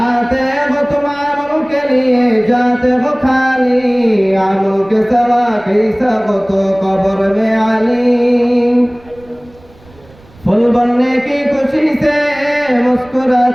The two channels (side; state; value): right; noise; rumble, 26 dB below the sound